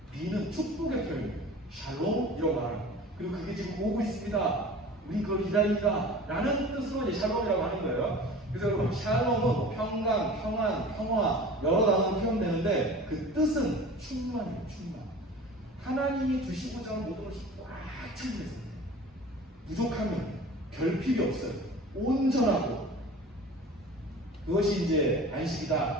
비는 축복의 표현이에요. 샬롬 이라고 말하는 거예요. 그리고 그게 지금 오고 있습니다. 우리 그걸 기다린다 라는 뜻으로 이제 샬롬이라고 하는 거예요. 그래서 여러분 샬롬은 평강, 평안, 평화 여러 단어로 표현되는데 그 뜻은 충만이에요. 충만. 하나님이 주시고자 하는 모든 것이 꽉 찬 데서 부족하면 결핍이 없어요. 온전하고 그것이 이제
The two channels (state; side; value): normal; both; correlation 0.40